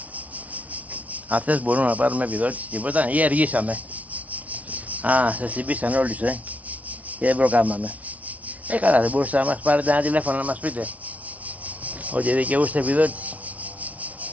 Αυτές μπορούμε να πάρουμε επιδότηση, τίποτα, ή αργήσαμε? Α, σας συμπήσαν όλοι σου, και δεν προκάμαμε. Καλά, δεν μπορούσατε να μας πάρετε ένα τηλέφωνο να μας πείτε ότι δικαιούστε επιδότηση?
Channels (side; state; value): left; late; 0.069 ms